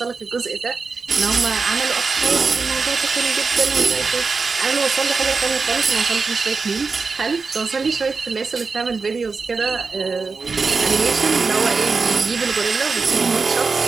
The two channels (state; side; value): quieter; left; 4.5 dB